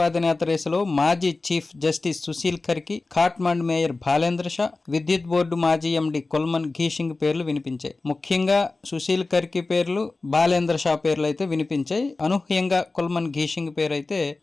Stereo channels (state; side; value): quieter; right; 3.5 dB